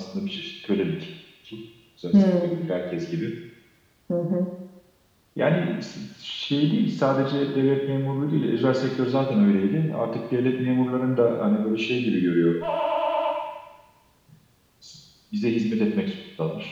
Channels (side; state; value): both; identical; correlation 1.00